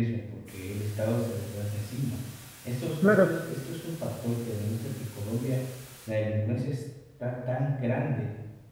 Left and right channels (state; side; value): identical; both; correlation 1.00